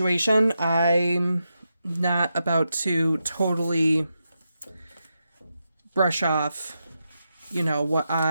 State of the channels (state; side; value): inverted; both; correlation -0.86